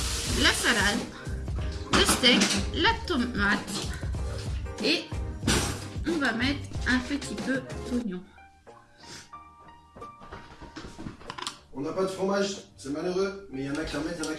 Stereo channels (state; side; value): identical; both; correlation 1.00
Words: la salade, le steak, la tomate et on va mettre un petit peu d'oignon. On n'a pas de fromage, c'est malheureux, mais il y en a qui en mettent, il y en a